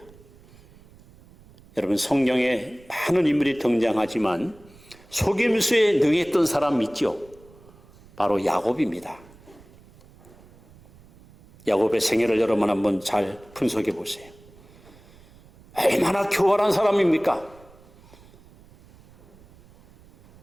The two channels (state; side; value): noise; right; rumble, 25 dB below the sound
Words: 여러분, 성경에 많은 인물이 등장하지만 속임수에 능했던 사람 있죠? 바로 야곱입니다. 야곱의 생애를 여러분 한번 잘 분석해 보세요. 얼마나 교활한 사람입니까?